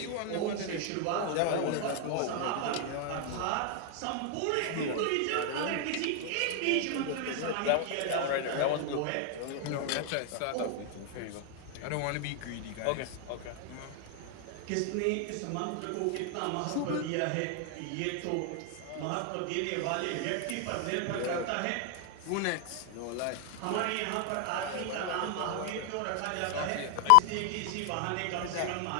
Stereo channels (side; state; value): both; different; correlation 0.00